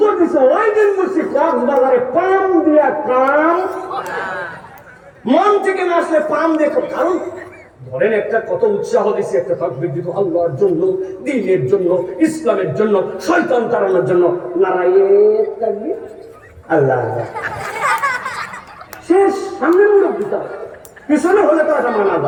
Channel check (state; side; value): identical; both; correlation 1.00